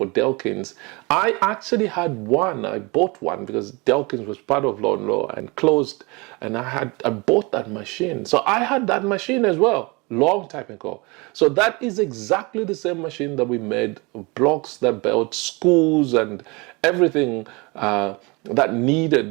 Delkins. I actually had one. I bought one because Delkins was part of Law and closed, and I bought that machine. So I had that machine as well, long time ago. So that is exactly the same machine that we made blocks that built schools and everything that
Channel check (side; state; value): left; quieter; 26.9 dB